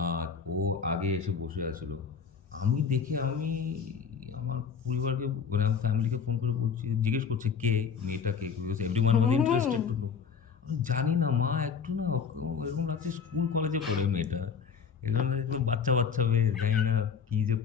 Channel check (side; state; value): right; quieter; 6.5 dB